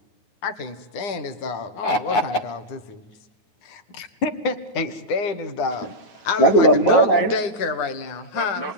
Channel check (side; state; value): right; late; 9.9 ms